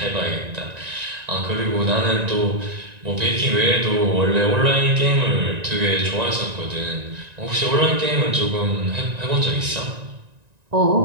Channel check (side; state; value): left; late; 1.9 ms